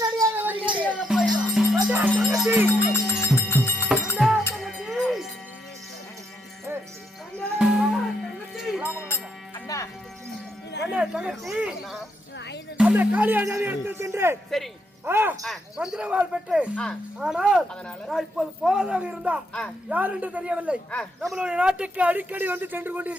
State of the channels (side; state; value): both; normal; correlation 0.77